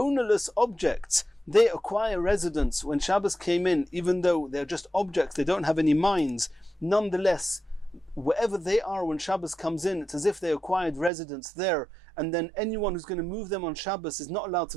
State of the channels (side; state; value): left; drops out; at 11.1 s